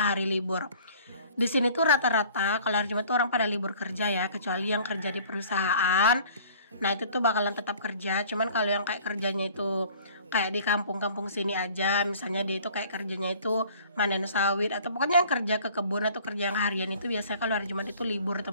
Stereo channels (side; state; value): both; inverted; correlation -0.50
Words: hari libur. Di sini tuh rata-rata kalau hari Jumat tuh orang pada libur kerja ya, kecuali yang kerja di perusahaan. Nah, itu tuh bakalan tetap kerja. Cuman kalau yang kayak kerjanya itu kayak di kampung-kampung sini aja, misalnya dia itu kayak kerjanya itu manen sawit atau pokoknya yang kerja ke kebun atau kerja yang harian itu biasanya kalau hari Jumat itu libur